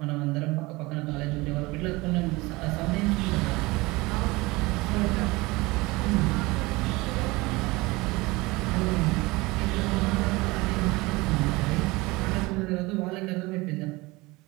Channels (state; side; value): quieter; left; 22.5 dB